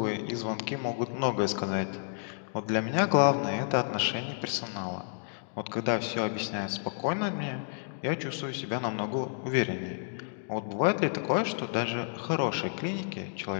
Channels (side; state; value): right; silent; digital silence